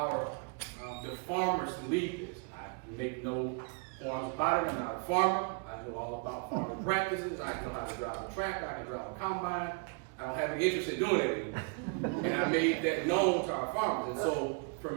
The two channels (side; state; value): left; quieter; 36.7 dB